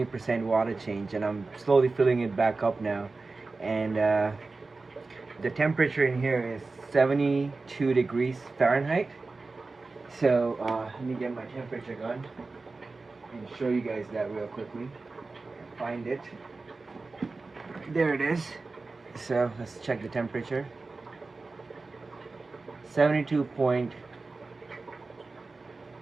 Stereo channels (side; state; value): left; quieter; 3.7 dB